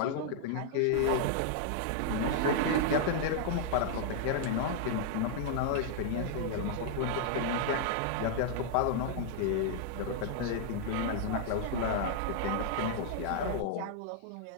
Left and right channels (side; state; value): both; different; correlation -0.01